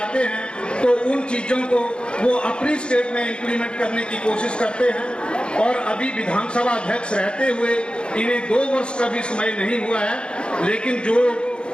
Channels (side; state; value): right; late; 0.054 ms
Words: हैं, तो उन चीज़ों को वो अपनी स्टेट में इम्प्लीमेंट करने की कोशिश करते हैं। और अभी विधानसभा अध्यक्ष रहते हुए इन्हें 2 वर्ष का भी समय नहीं हुआ है, लेकिन जो